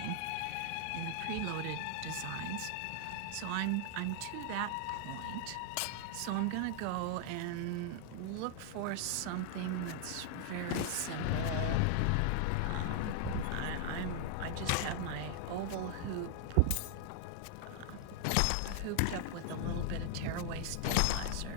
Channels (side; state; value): both; different; correlation -0.01